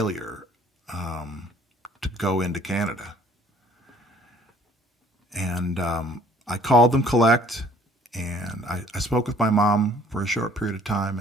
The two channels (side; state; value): both; normal; correlation 0.56